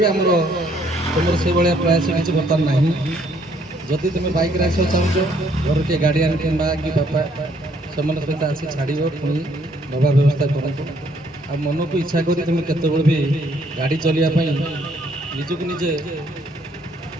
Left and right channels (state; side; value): normal; both; correlation 0.66